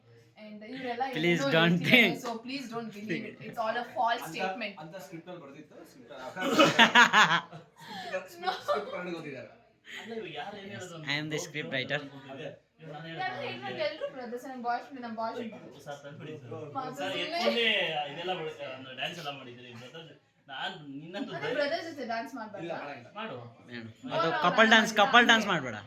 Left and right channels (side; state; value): both; identical; correlation 1.00